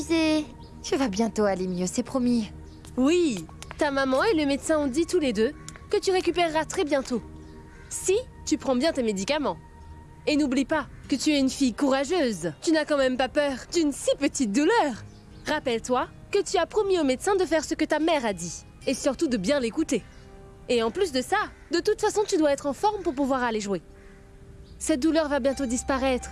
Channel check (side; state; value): both; identical; correlation 1.00